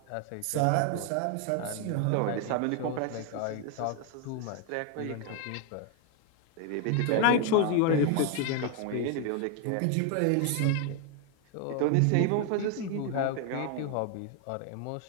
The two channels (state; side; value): different; both; correlation 0.00